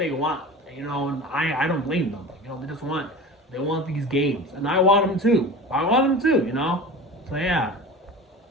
want, and I don't blame them. They want these games, and I want them too. So yeah.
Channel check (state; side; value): normal; both; correlation 0.34